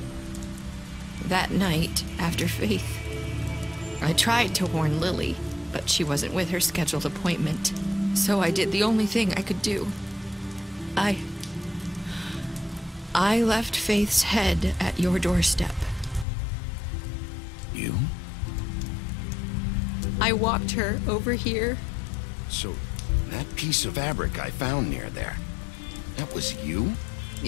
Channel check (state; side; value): drops out; right; at 16.2 s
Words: that night, after Faith. I tried to warn Lily, but she wasn't with her scheduled appointment. So I did the only thing I could do. I left Faith's head at your doorstep. You? I walked her over here. So, that piece of fabric I found near there, that was you?